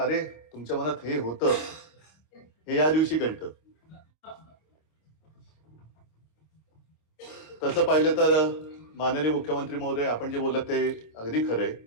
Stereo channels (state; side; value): late; right; 26 ms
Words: तुमच्या मनात हे होतं हे या दिवशी कळतं. तसं पाहिलं तर माननीय मुख्यमंत्री महोदय, आपण जे बोलत ते अगदी खरंय.